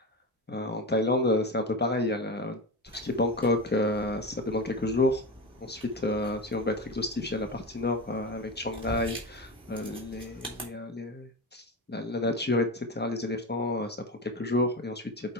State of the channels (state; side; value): normal; both; correlation 0.23